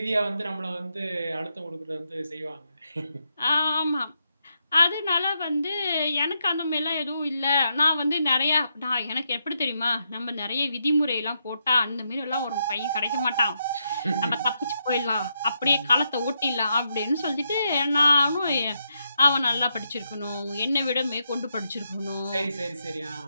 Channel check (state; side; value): inverted; both; correlation -0.81